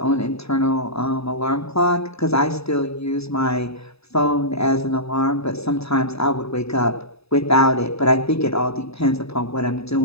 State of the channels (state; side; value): late; right; 0.78 ms